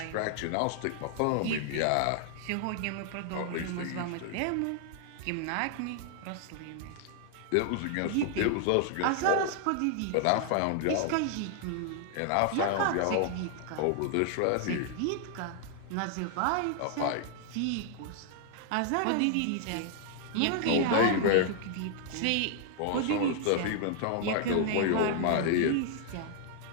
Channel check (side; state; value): both; different; correlation 0.00